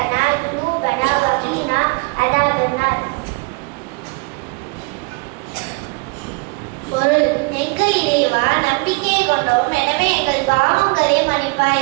ذنوبنا وقنا عذاب النار. பொருள் எங்கள் இறைவா நம்பிக்கை கொண்டோம், எனவே எங்கள் பாவங்களை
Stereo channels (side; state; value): left; quieter; 29.1 dB